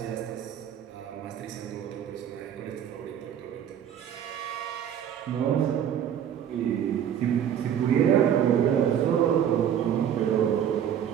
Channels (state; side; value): quieter; left; 9.4 dB